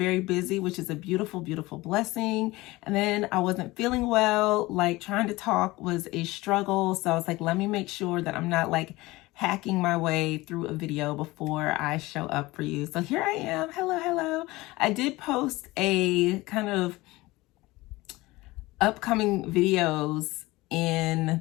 busy, which is a beautiful, beautiful blessing. And then I wasn't feeling well, like trying to talk was a struggle. So I was like, let me make sure that I'm not like hacking my way through a video before I show up for you. So here I am. Hello, hello. I did post a kind of upcoming videos in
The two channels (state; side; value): quieter; right; 20.2 dB